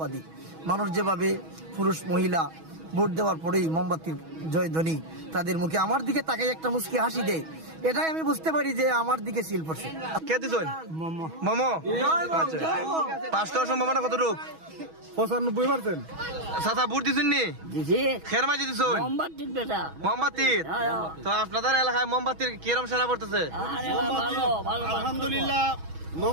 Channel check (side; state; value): left; late; 6.2 ms